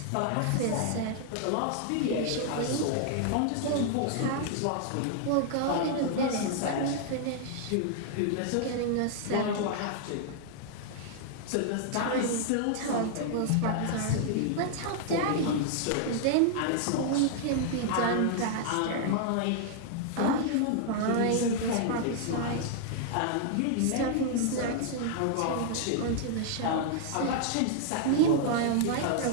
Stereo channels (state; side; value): different; both; correlation -0.01